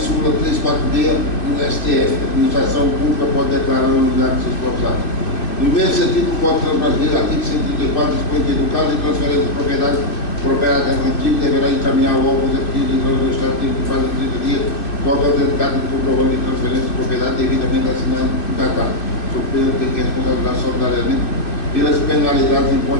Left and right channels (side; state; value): right; late; 2.6 ms